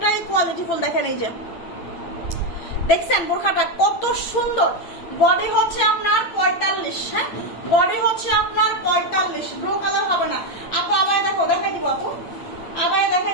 কোয়ালিটিফুল। দেখেন এই যে, দেখছেন বোরখাটা কত সুন্দর। বডি হচ্ছে আপনার 45, হ্যাঁ, বডি হচ্ছে আপনার 45। ব্লু কালার হবে না আপু। আবার দেখো, দেখাই দিব আপু, আবার দেখাই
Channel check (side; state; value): right; late; 8.8 ms